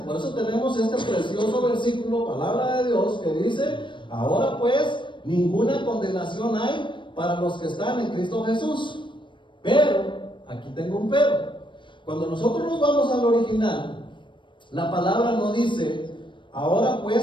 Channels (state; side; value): late; right; 0.23 ms